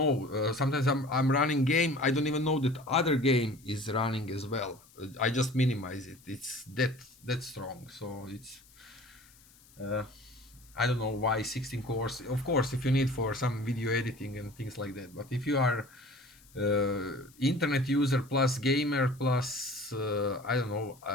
sometimes I'm running game, I don't even know that other game is running as well. I just minimize it. It's that strong. So it's I don't know why 16 cores. Of course, if you need for some video editing and things like that, but if you are internet user plus gamer plus I don't know,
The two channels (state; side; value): noise; left; hiss, 27 dB below the sound